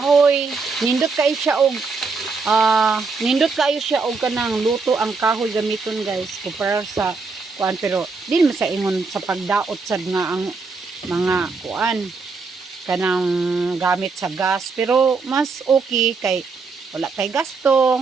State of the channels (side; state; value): left; quieter; 4.4 dB